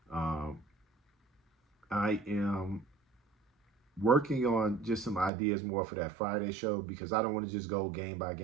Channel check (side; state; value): left; drops out; at 5.3 s